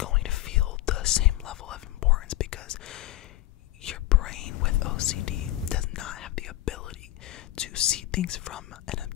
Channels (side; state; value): right; quieter; 16.2 dB